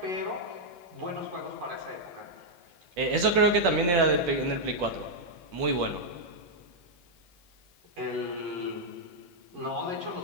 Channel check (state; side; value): late; left; 11 ms